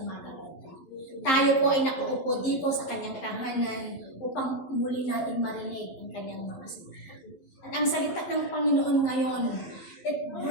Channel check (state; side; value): late; right; 11 ms